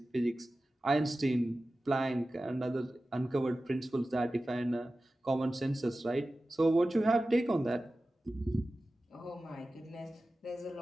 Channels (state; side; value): normal; both; correlation 0.95